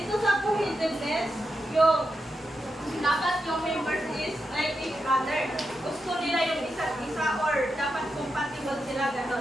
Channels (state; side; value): normal; both; correlation 0.87